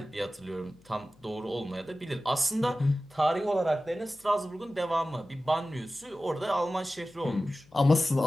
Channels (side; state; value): left; noise; hum, 29 dB below the sound